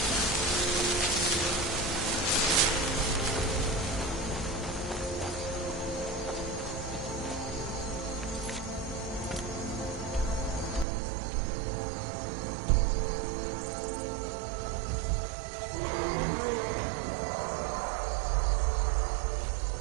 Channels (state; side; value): drops out; left; at 10.9 s